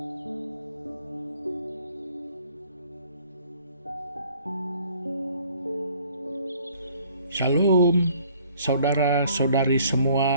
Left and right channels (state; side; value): inverted; both; correlation -0.58